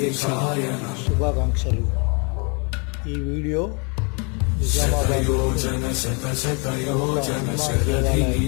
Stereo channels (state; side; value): quieter; right; 33.8 dB